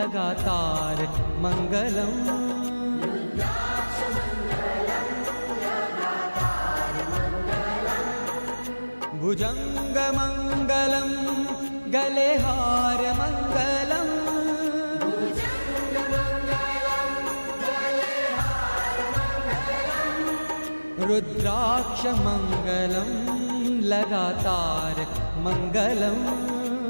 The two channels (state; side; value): inverted; both; correlation -1.00